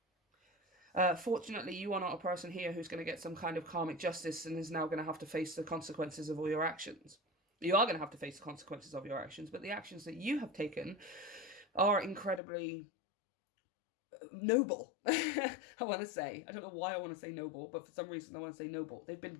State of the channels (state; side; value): drops out; right; at 12.4 s